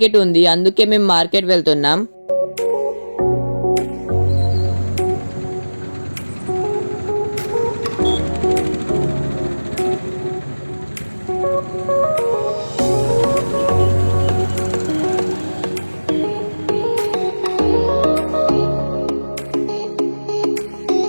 ఉంది, అందుకే మేము మార్కెట్ వెళ్తున్నాం.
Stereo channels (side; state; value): both; inverted; correlation -1.00